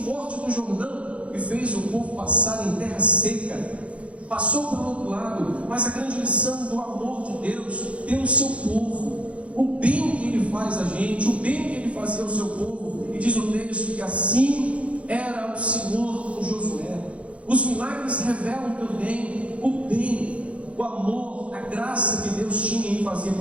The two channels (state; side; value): late; left; 0.063 ms